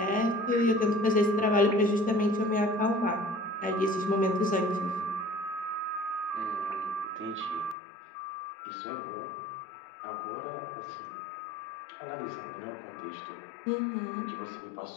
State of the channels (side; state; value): right; drops out; at 7.8 s